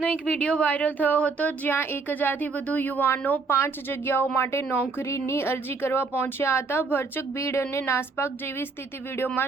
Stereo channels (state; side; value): quieter; left; 4.3 dB